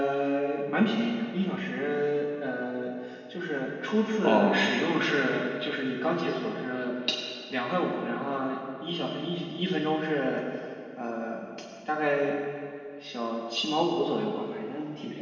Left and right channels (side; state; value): both; identical; correlation 1.00